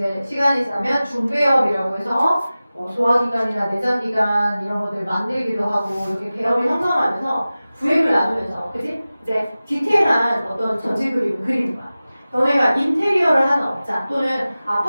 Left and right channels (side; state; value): both; inverted; correlation -0.96